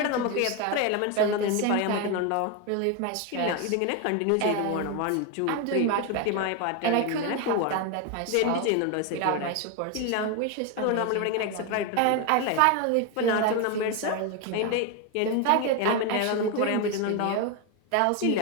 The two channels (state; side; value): different; both; correlation 0.02